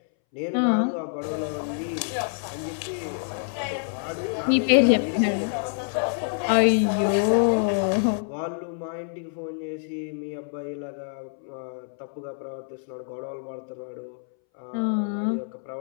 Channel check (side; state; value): right; silent; 61 dB below the other